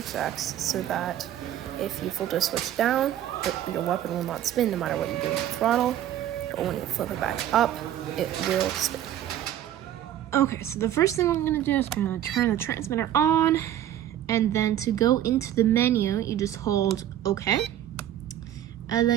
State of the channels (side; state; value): left; quieter; 11.7 dB